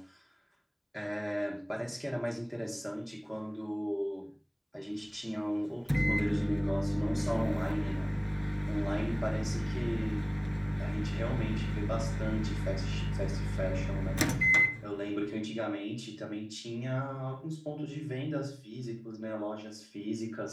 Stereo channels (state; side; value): identical; both; correlation 1.00